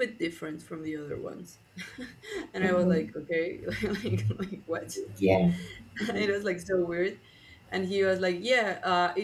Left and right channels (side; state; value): both; identical; correlation 1.00